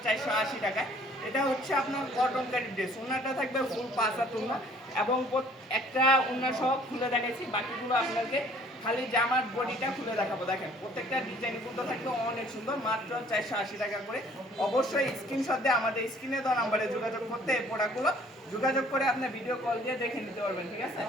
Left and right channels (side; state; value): both; normal; correlation 0.56